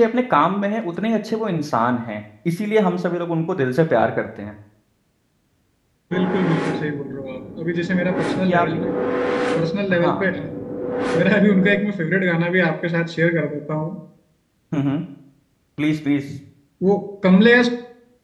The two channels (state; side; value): identical; both; correlation 1.00